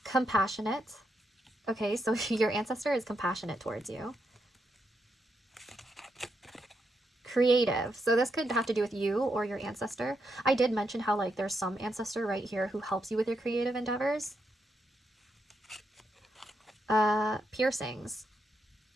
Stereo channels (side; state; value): both; normal; correlation 0.82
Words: Compassionate. Okay, so your ancestor is compassionate towards you. Creative. So this could have to do with you or your ancestor. I did mention how like there's some ancestor right here who helps you with your creative endeavors. Piercings.